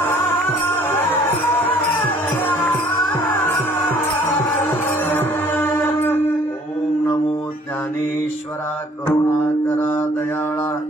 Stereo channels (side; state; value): both; normal; correlation 0.57